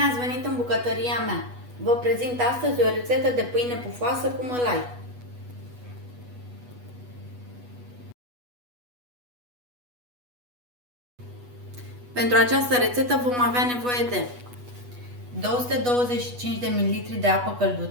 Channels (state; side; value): late; left; 8.2 ms